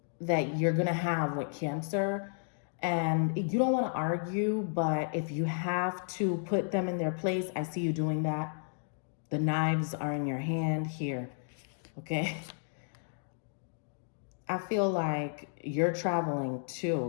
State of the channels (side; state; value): right; silent; digital silence